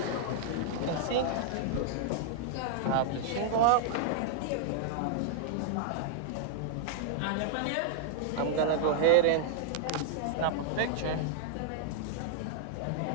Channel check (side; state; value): both; different; correlation -0.01